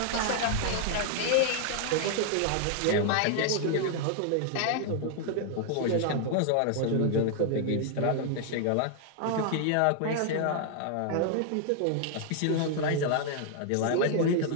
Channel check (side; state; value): both; different; correlation 0.00